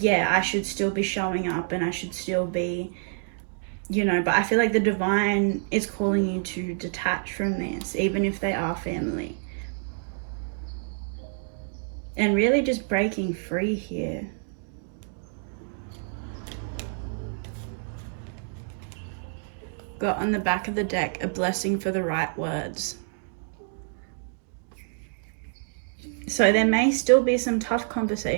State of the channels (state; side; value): silent; left; digital silence